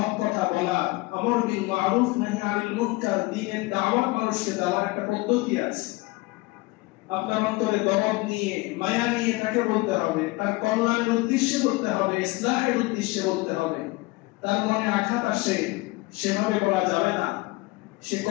কথা বলা, আমর বিল মারুফ নাহি আনিল মুনকার, দ্বীনের দাওয়াত মানুষকে দেওয়ার একটা পদ্ধতি আছে। আপনার অন্তরে দরদ নিয়ে, মায়া নিয়ে তাকে বলতে হবে, তার কল্যাণের উদ্দেশ্যে বলতে হবে, ইসলাহের উদ্দেশ্যে বলতে হবে। তার মনে আঘাত আসে, সেভাবে বলা যাবে না। সে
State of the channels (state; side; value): quieter; right; 23.0 dB